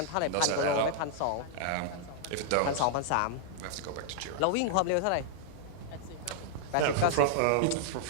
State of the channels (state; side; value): different; both; correlation -0.01